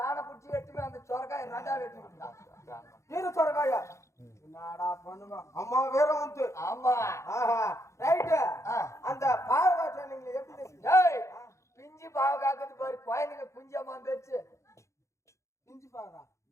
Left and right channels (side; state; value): right; late; 0.14 ms